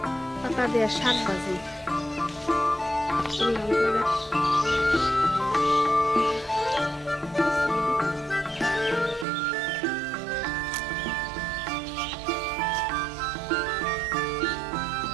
পাতা দিয়ে শাক ভাজি।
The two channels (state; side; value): drops out; left; at 9.2 s